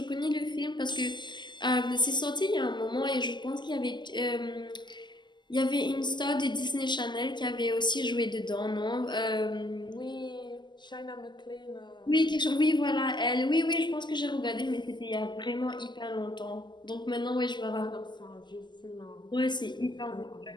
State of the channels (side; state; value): right; late; 0.21 ms